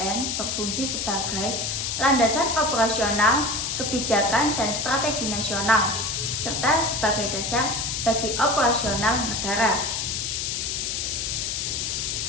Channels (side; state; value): left; noise; hiss, 1 dB below the sound